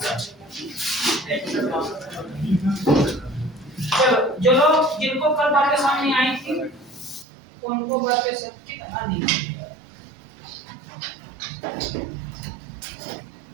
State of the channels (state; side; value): drops out; left; at 7.2 s